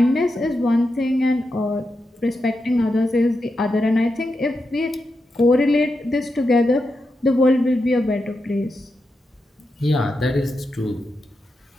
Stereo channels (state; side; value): normal; both; correlation 0.87